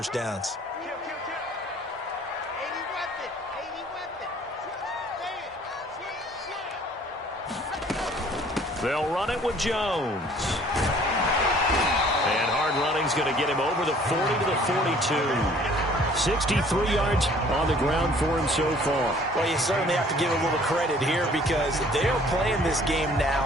downs. They'll run it with Jones. And hard running's going to get him over the 40 to the 42. 63 yards on the ground for him so far. Well, you certainly have to give a little credit here because they're playing this game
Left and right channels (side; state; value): both; normal; correlation 0.55